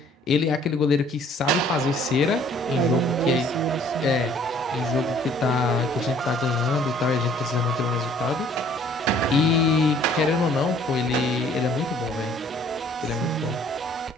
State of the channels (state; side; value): normal; both; correlation 0.57